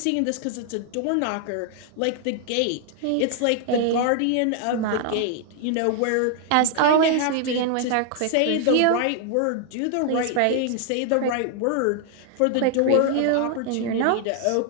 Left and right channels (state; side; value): different; both; correlation 0.00